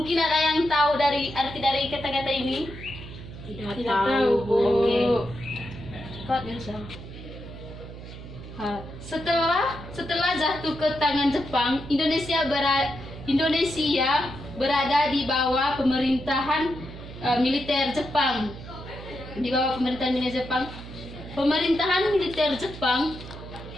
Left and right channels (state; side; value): noise; right; hum, 13 dB below the sound